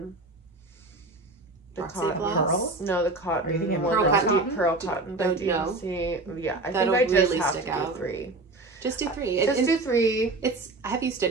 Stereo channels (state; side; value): quieter; left; 3.1 dB